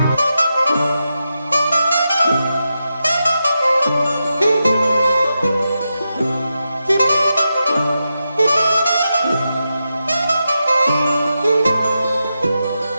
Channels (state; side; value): inverted; both; correlation -0.88